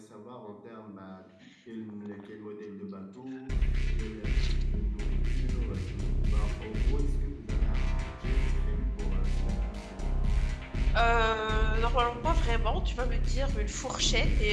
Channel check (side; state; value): both; identical; correlation 1.00